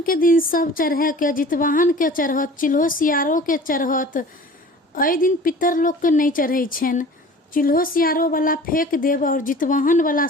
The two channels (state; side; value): normal; both; correlation 0.43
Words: के दिन सब चढ़ा के, जितवाहन के चढ़त, चिल्हो सियारो के चढ़त। एहि दिन पितर लोग के नहीं चढ़ै छनि। चिल्हो सियारो वाला फेंक देब और जितवाहन वाला